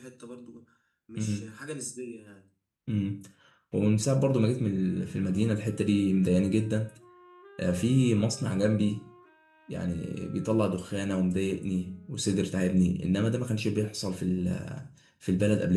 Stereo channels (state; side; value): identical; both; correlation 1.00